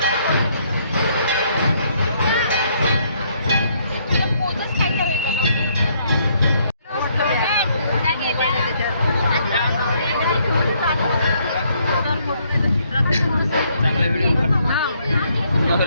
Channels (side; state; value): both; inverted; correlation -0.69